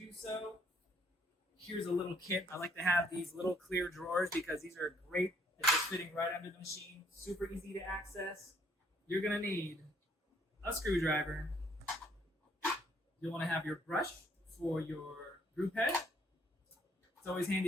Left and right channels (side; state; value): both; normal; correlation 0.66